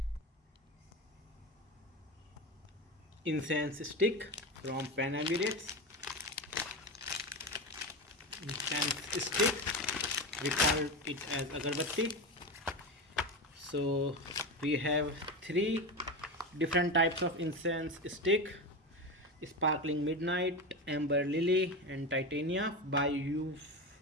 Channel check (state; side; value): normal; both; correlation 0.20